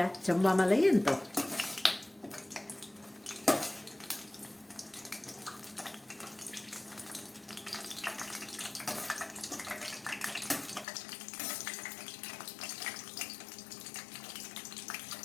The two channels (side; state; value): right; drops out; at 10.9 s